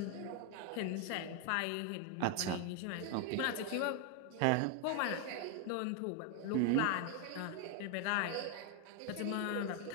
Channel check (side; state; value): both; different; correlation 0.01